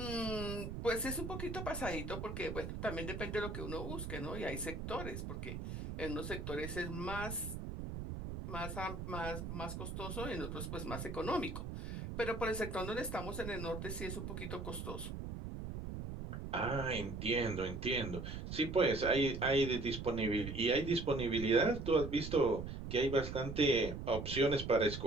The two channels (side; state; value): right; noise; rumble, 6 dB below the sound